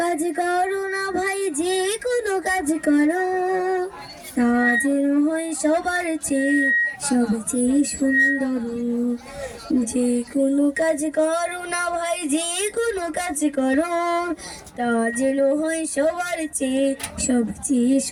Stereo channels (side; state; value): both; identical; correlation 1.00